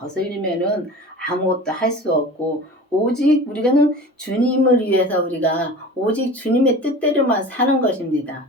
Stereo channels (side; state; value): both; normal; correlation 0.37